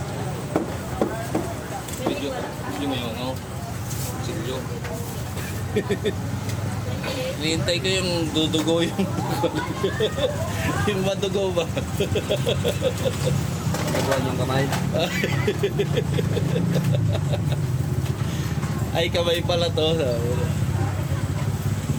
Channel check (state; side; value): identical; both; correlation 1.00